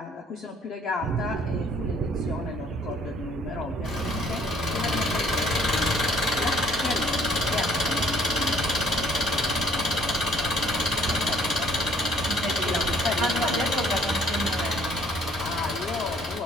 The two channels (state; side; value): normal; both; correlation 0.59